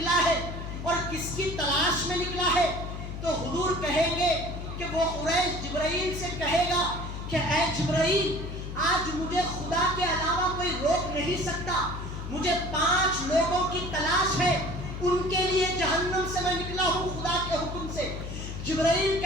ہے اور کس کی تلاش میں نکلا ہے. تو حضور کہیں گے کہ وہ حریش جبرائیل سے کہے گا کہ اے جبرائیل آج مجھے خدا کے علاوہ کوئی روک نہیں سکتا, مجھے 5 لوگوں کی تلاش ہے, ان کے لیے جہنم سے میں نکلا ہوں خدا کے حکم سے. جبرائیل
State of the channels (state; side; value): noise; left; hum, 7 dB below the sound